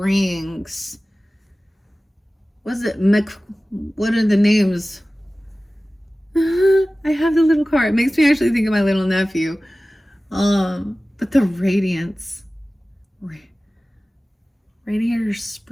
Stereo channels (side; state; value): both; normal; correlation 0.97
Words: Was it what are the names? I have the little car. It makes me actually think of my little nephew. But the Radiance. Radiator